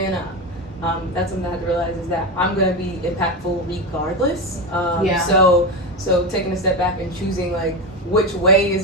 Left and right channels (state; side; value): normal; both; correlation 0.17